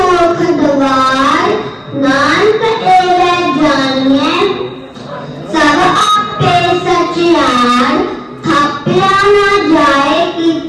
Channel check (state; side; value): identical; both; correlation 1.00